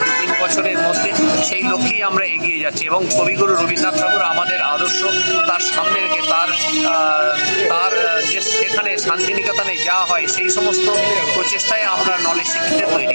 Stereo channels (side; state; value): both; inverted; correlation -1.00